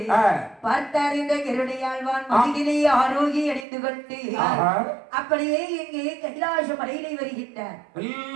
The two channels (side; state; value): left; drops out; at 3.7 s